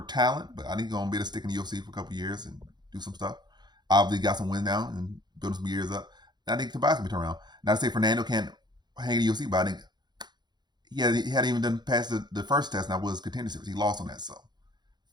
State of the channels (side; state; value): left; late; 0.21 ms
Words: talent, but I think he's gonna be able to stick in the UFC for a couple years and do some stuff. Obviously, got some wins now and building some years up. And I think Tobias will be turned around. Not to say Fernando can't hang in the UFC, but I think he hadn't even done past the first test. Now was Contender Series. He lost on that, so